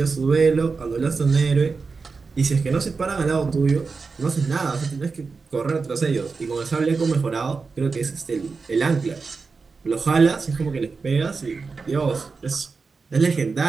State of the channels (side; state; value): left; quieter; 4.6 dB